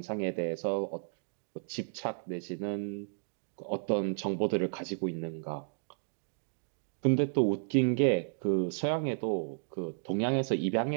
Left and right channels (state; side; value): silent; left; digital silence